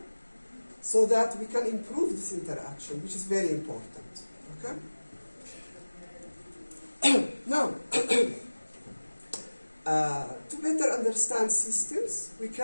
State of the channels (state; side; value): inverted; both; correlation -1.00